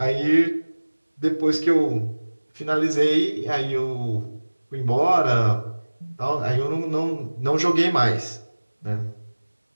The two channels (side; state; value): both; inverted; correlation -1.00